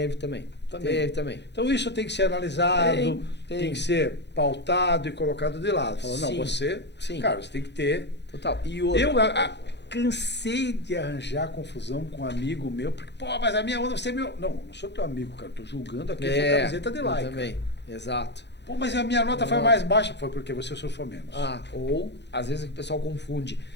também. Então isso tem que ser analisado, tem que ser pautado e colocado de lado. Falando, não, você, cara, você tem que ter. Total. E outra, Eu cansei de arranjar confusão com um amigo meu, porque, pô, mas a minha onda, você é meu. Não sou teu amigo, cara, tô julgando aqui a sua camiseta de like. Também, exato. Pô, mas a minha nota foi mais baixa. Foi porque você surfou menos. Ou, às vezes, o pessoal confunde.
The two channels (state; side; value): late; right; 0.50 ms